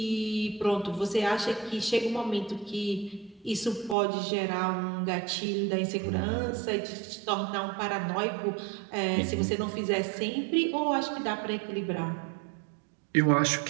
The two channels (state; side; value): drops out; left; at 4.0 s